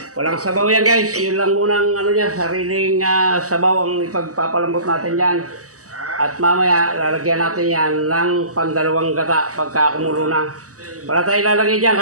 Walang sabaw yan guys. Yun lang munang ano niya, sariling sabaw ang ipagpapalambot natin yan. At mamaya lalagyan natin yan ng pandalawang gata pagka kumulo na. Para tayo lalagay dyan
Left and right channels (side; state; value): left; late; 0.66 ms